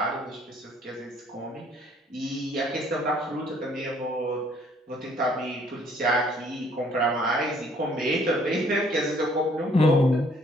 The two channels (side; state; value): both; normal; correlation 0.62